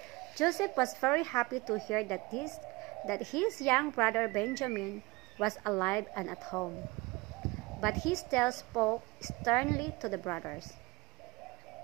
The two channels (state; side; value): quieter; left; 23.2 dB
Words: Joseph was very happy to hear that his young brother Benjamin was alive and at home. But he still spoke sternly to the brothers.